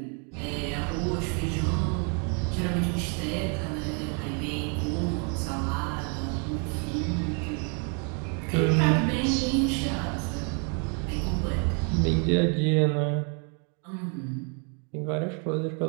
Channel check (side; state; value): left; quieter; 38.0 dB